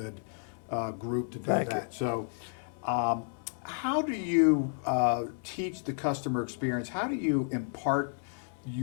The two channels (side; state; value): right; silent; digital silence